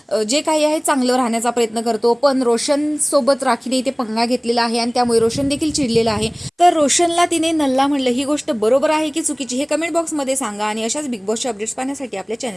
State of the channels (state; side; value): identical; both; correlation 1.00